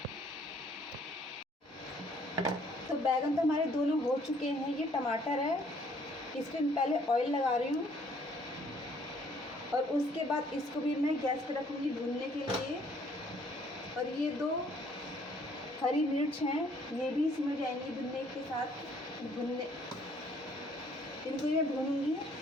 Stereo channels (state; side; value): normal; both; correlation 0.62